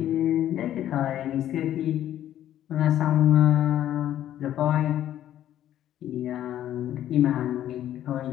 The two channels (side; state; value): right; quieter; 11.9 dB